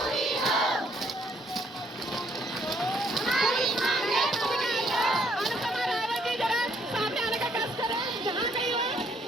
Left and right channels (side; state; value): both; normal; correlation 0.68